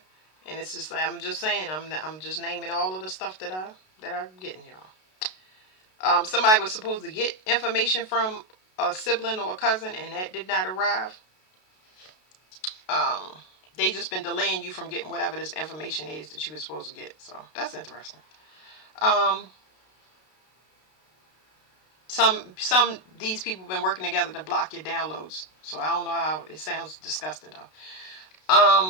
and it's just like I'm just saying. I'm just naming all of the stuff that that I'm getting, y'all. Somebody was supposed to get information from a sibling or a cousin, and that did not arrive. Um, they just been delaying you from getting whatever this information is that you were supposed to get. So that's interesting. Um, some these people have been working together to block your downloads. So I don't know how it sounds disgusting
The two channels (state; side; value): late; right; 32 ms